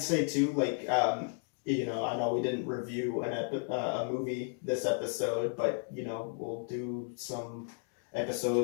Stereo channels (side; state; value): right; silent; 55 dB below the other